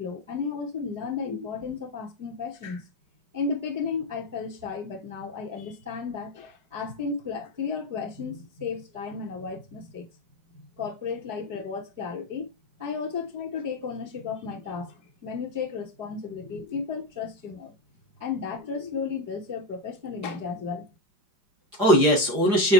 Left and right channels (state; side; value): late; left; 4.9 ms